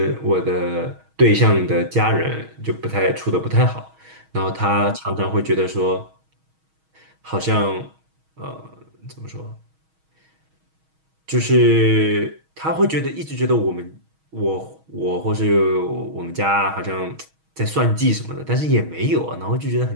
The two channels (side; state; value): left; late; 6.3 ms